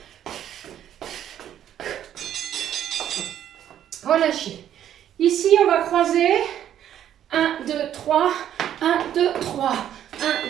Relâchez. Ici, on va croiser. 1, 2, 3. 1, 2, 3. 1,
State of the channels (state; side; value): quieter; left; 10.6 dB